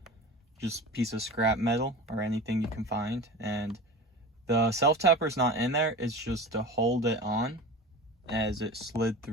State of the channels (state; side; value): normal; both; correlation 0.33